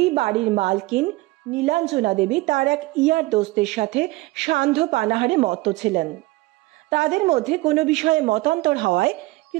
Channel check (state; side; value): quieter; left; 20.4 dB